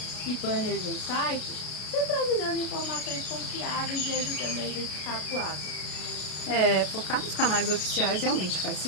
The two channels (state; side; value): late; right; 33 ms